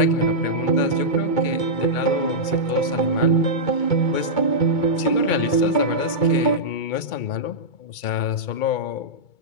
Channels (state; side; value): late; right; 2.2 ms